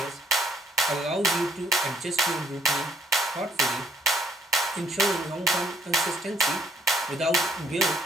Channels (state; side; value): normal; both; correlation 0.67